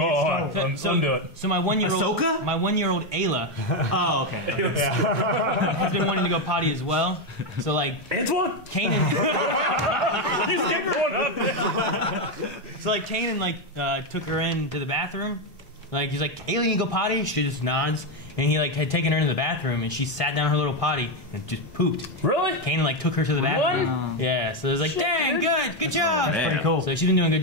Undo it. So my 1-year-old Ahsoka? my 1-year-old Ayla Oh, okay. has been wanting to go potty as well. So like Antoine? Kanan, He's getting one up. so like Kanan took her into the bathroom. Like he's like, Ayla, you go potty? She just nods. And he like had taken her into the bathroom, and she sat down in her little potty and just pooped. Really? Kanan like took her to the bathroom. Yeah, so it was like, dang, good job. Damn. pretty cool. So she's been doing a good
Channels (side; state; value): both; normal; correlation 0.07